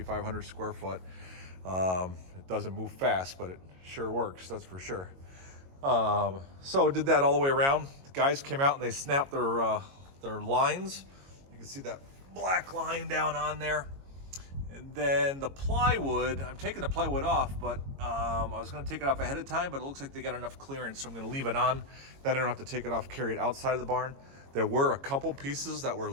square foot. It doesn't move fast, but it sure works, that's for sure. So did that all the way around. The guys came out and they snapped their lines. You can see that black line down on there. And then the plywood, I'm taking the plywood off, but I was going to take it off ahead of time, but it looks like they got enough clearance, so I'm going to leave it on. Then I don't have to take it off, carry it outside of the barn. There were a couple pieces that were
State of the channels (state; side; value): late; left; 22 ms